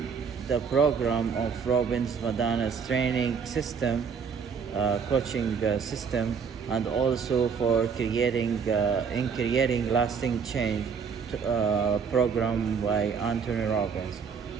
the program of Robbins Madana's training system, coaching system, and also for creating lasting change program by Anthony Robbins.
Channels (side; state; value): left; quieter; 6.2 dB